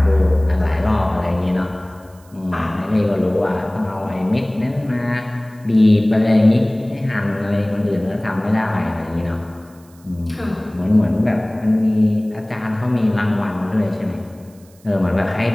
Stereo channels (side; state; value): right; noise; hiss, 29 dB below the sound